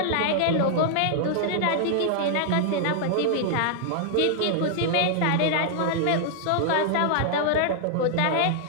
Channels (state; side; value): different; both; correlation -0.01